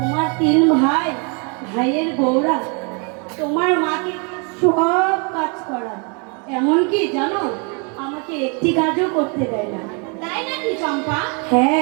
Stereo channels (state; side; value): quieter; left; 35.5 dB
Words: তিন ভাই, ভাইয়ের বউরা তোমার মাকে সব কাজ করায়, এমনকি জানো আমাকে একটি কাজও করতে দেয় না। তাই নাকি চম্পা?